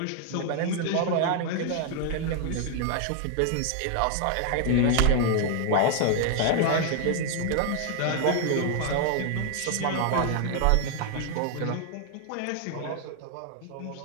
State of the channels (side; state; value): both; different; correlation 0.00